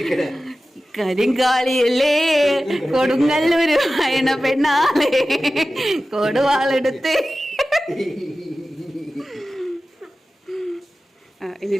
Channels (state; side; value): normal; both; correlation 0.95